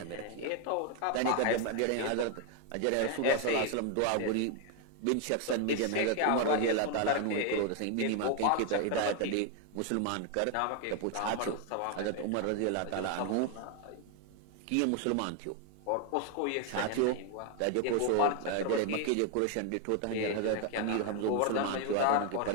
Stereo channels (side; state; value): both; different; correlation 0.01